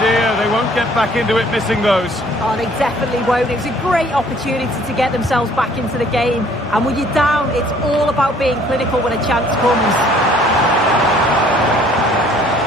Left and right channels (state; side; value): normal; both; correlation 0.58